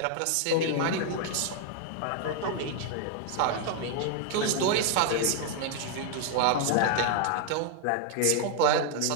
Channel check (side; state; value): both; different; correlation 0.00